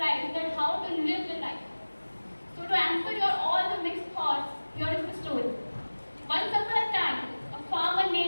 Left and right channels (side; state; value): both; inverted; correlation -1.00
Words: that how to live the life. So to answer your all the mixed thoughts, here is the story. Once upon a time, a farmer